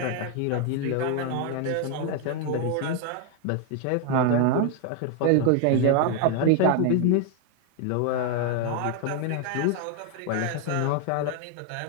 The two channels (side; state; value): both; different; correlation 0.01